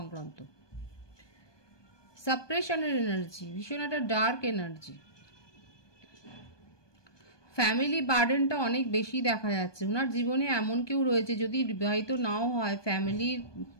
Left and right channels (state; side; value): late; right; 1.2 ms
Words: সাপ্রেশনের এনার্জি, ভীষণ একটা ডার্ক এনার্জি। ফ্যামিলি বার্ডেনটা অনেক বেশি দেখা যাচ্ছে। ওনার জীবনে এমন কেউ রয়েছে, যদি বিবাহিত নাও হয়, ফ্যামিলির